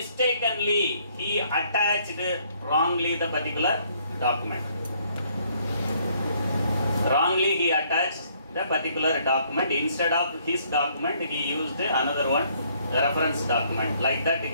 he attached wrongly the particular document. Wrongly he attached the particular document. Instead of his document, he used another one, the reference document. Like that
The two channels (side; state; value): both; inverted; correlation -0.66